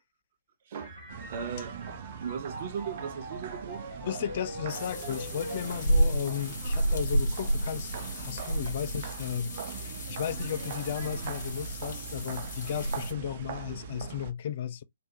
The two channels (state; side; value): inverted; both; correlation -0.73